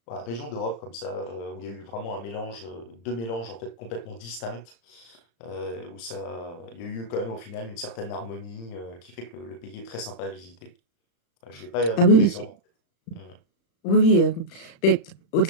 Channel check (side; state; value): right; late; 35 ms